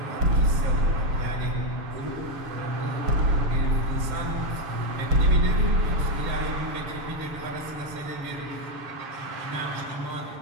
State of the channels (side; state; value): left; late; 7.0 ms